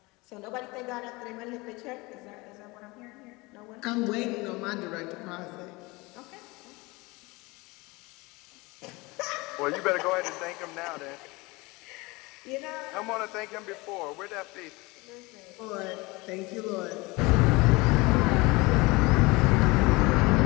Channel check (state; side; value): quieter; right; 23.9 dB